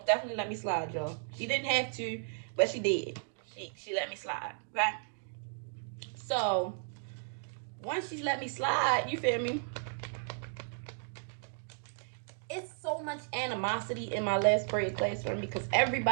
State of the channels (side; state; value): left; silent; digital silence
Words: definitely let me slide, y'all. She didn't have to, but she did. She let me slide, okay? So once she let me slide, you feel me? It's so much animosity in my last period classroom because